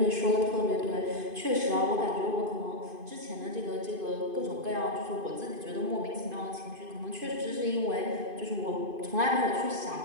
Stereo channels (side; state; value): left; late; 2.5 ms